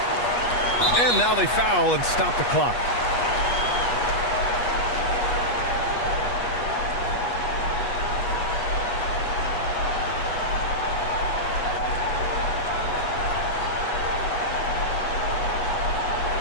And now they foul and stop the clock.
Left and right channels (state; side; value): late; right; 8.3 ms